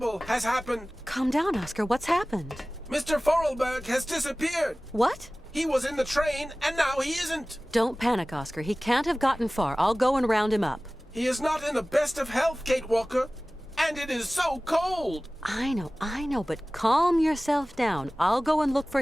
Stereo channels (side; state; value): both; normal; correlation 0.98